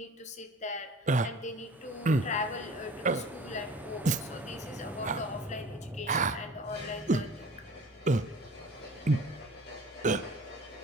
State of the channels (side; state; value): both; normal; correlation 0.44